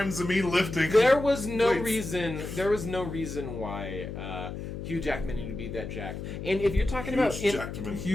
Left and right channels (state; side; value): noise; left; hum, 7 dB below the sound